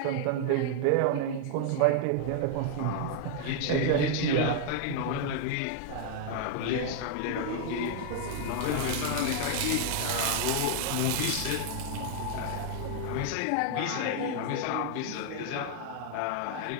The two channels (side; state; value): both; different; correlation 0.00